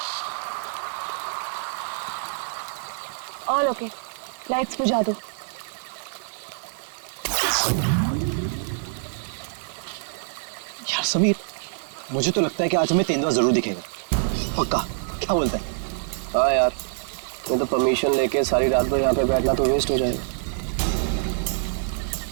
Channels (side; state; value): left; silent; digital silence